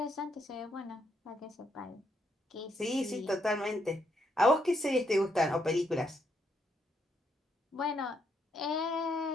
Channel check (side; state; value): both; normal; correlation 0.76